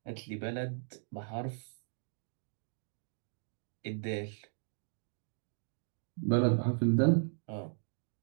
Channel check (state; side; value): silent; left; digital silence